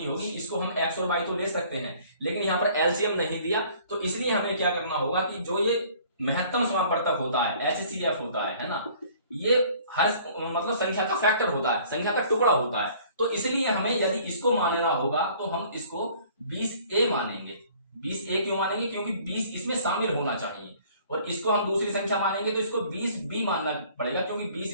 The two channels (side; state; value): both; inverted; correlation -0.54